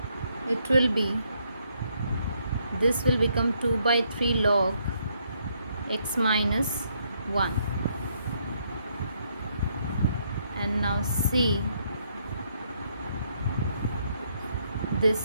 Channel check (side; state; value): both; inverted; correlation -0.72